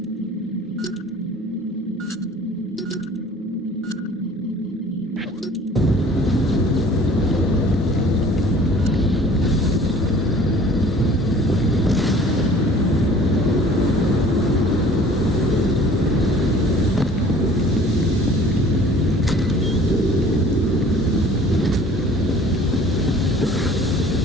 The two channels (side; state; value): both; normal; correlation 0.50